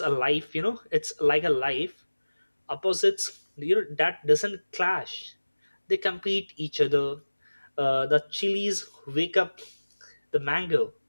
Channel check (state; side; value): inverted; both; correlation -1.00